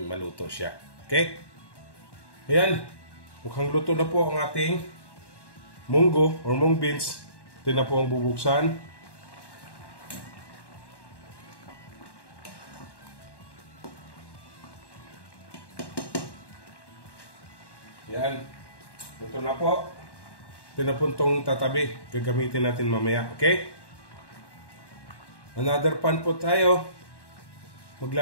maluto siya. Okay? Ayan. Mukhang luto na po ang ating munggo or mung beans. Ito na po ang bubuksan. Yan. Ito na po. Ito na po itong tatabi. Gagamitin natin mamaya. Okay? Another pan po tayo.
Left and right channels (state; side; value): late; right; 1.1 ms